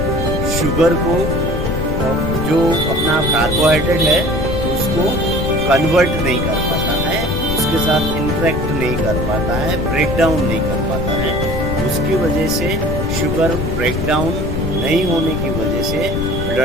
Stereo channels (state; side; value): noise; left; rumble, 3 dB below the sound